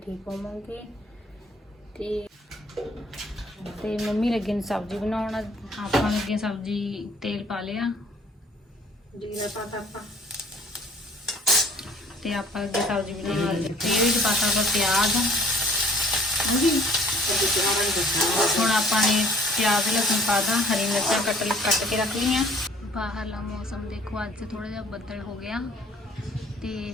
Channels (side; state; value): both; normal; correlation 0.56